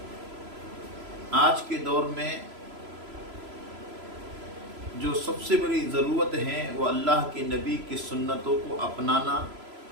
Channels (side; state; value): left; late; 3.0 ms